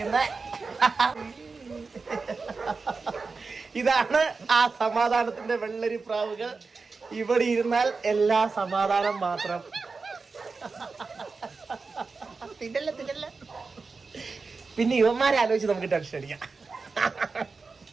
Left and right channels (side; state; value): left; quieter; 4.4 dB